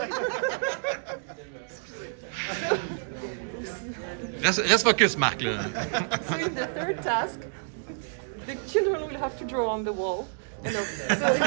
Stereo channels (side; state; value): left; silent; digital silence